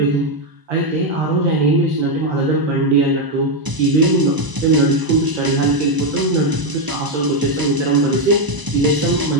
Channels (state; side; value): late; left; 1.0 ms